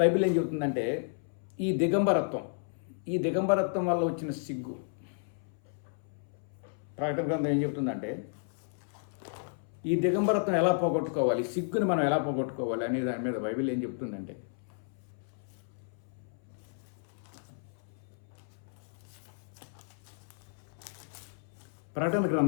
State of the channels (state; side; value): silent; right; 56 dB below the other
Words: బైబిల్ ఏం చెబుతుందంటే, ఈ దిగంబరత్వం వల్ల వచ్చిన సిగ్గు, ప్రకటన గ్రంథం ఏం చెబుతుందంటే, ఈ దిగంబరత్వం ఎలా పోగొట్టుకోవాలి, సిగ్గుని మనం ఎలా పోగొట్టుకోవాలి అనే దాని మీద బైబిల్ ఏం చెప్తుందంటే, ప్రకటన